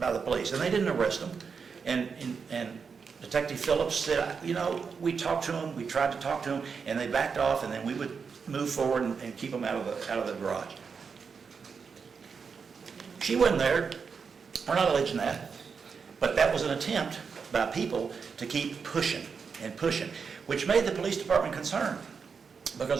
the police, and they didn't arrest them. And Detective Phillips said, you know, we talked to them, we tried to talk to them, and they backed off, and then we would move forward and keep them out of the garage. She wasn't there. We're not alleging that. But that was an attempt by people to keep pushing and pushing, which made the police department concerned. Because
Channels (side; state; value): left; quieter; 5.7 dB